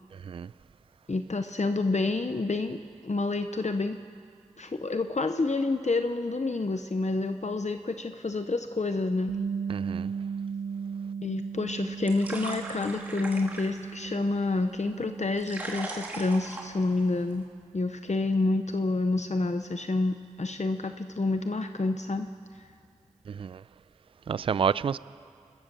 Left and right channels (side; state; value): both; normal; correlation 0.76